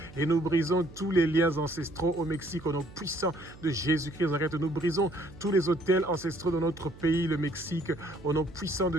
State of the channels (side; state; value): right; noise; hum, 19 dB below the sound